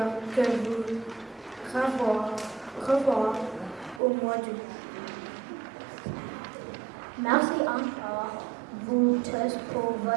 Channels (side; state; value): left; drops out; at 4.0 s